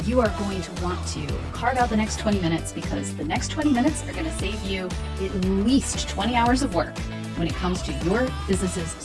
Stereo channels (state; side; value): identical; both; correlation 1.00